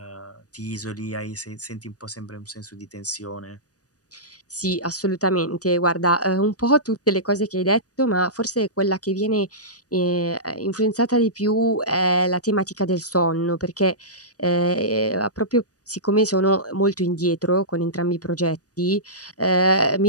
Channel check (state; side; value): late; right; 0.67 ms